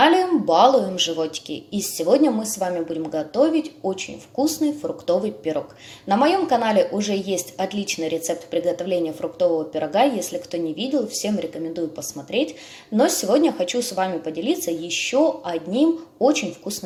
Балуем животики, и сегодня мы с вами будем готовить очень вкусный фруктовый пирог. На моем канале уже есть отличный рецепт приготовления фруктового пирога, если кто не видел, всем рекомендую посмотреть. Но сегодня хочу с вами поделиться еще одним очень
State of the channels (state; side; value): identical; both; correlation 1.00